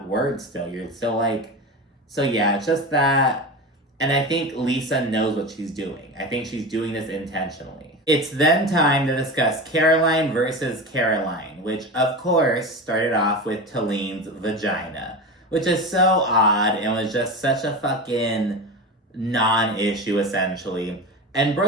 word still. You're still like, so yeah, it's just that. And I think Lisa knows what she's doing. I think she's doing this intentionally. It's then time to discuss Caroline versus Caroline, which of course started off with Talin's vagina, which is so odd and was just such a fucking non-issue essentially. And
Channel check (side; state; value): both; normal; correlation 0.26